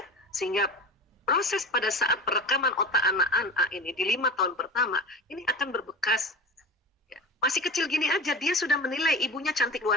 sehingga proses pada saat perekaman otak anak-anak ini, di 5 tahun pertama, ini akan berbekas. Ya. Masih kecil gini aja, dia sudah menilai ibunya cantik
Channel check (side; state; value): both; normal; correlation 0.30